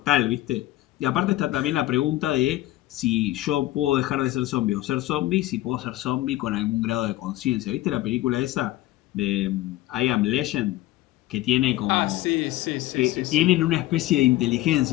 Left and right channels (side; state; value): right; quieter; 16.1 dB